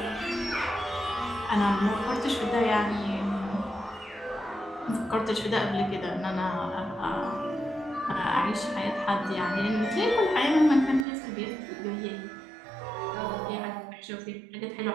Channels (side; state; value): left; drops out; at 11.1 s